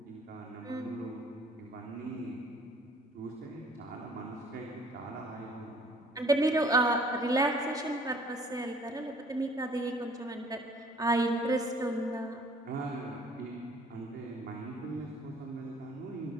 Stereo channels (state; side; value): normal; both; correlation 0.56